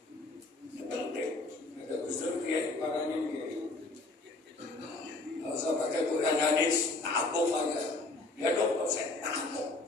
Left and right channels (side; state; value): right; quieter; 3.1 dB